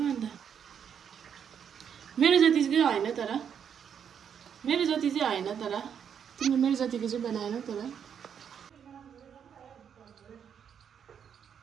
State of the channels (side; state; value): left; quieter; 8.0 dB